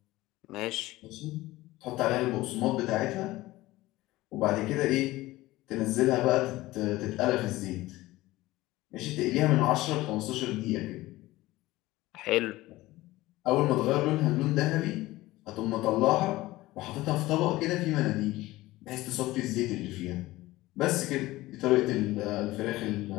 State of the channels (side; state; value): right; quieter; 18.1 dB